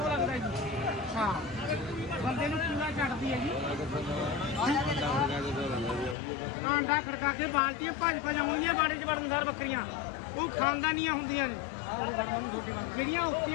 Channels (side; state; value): right; drops out; at 6.2 s